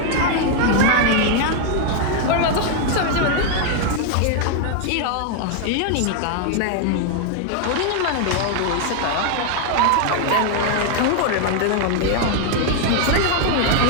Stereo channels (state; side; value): different; both; correlation 0.00